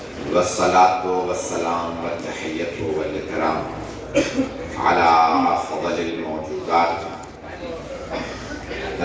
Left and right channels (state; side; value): identical; both; correlation 1.00